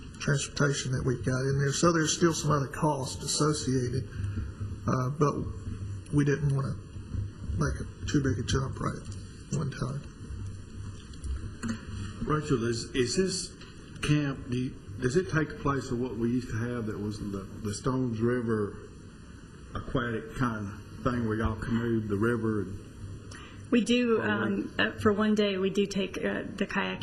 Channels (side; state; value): both; identical; correlation 1.00